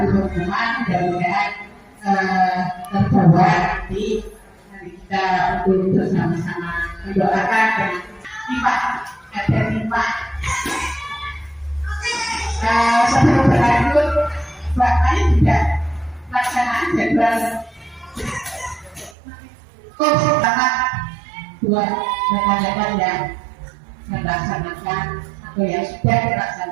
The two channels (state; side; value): drops out; left; at 19.2 s